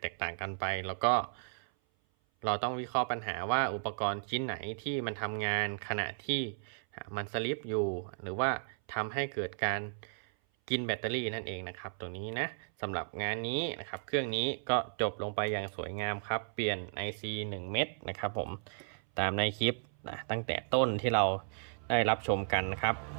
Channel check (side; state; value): left; silent; 55 dB below the other